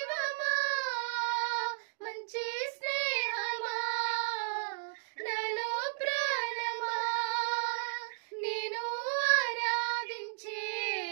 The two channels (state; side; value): silent; left; digital silence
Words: మంచి స్నేహమా నాలో ప్రాణమా నేను ఆరాధించే